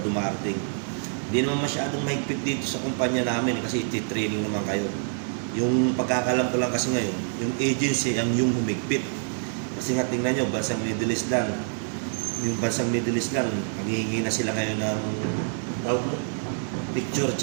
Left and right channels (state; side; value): silent; left; 59 dB below the other